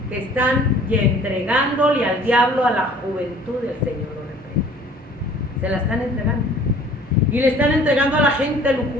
que están entregándole al diablo a la juventud del Señor lo reprende. Se la están entregando. Y le están entregando a la gente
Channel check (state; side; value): normal; both; correlation 0.51